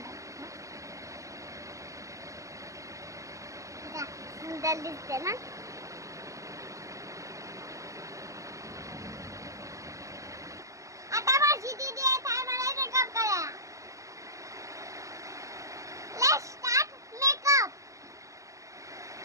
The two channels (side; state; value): left; late; 0.16 ms